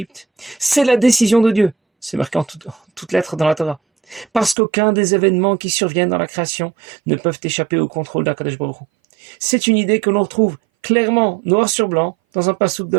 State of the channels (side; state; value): left; drops out; at 4.5 s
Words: c'est la décision de Dieu. C'est marqué en toutes lettres dans la Torah. Parce qu'aucun des événements qui surviennent dans la création ne peuvent échapper au contrôle d'Akadosh Baruch Hu. C'est une idée que l'on retrouve clairement, noir sur blanc, dans un passouk de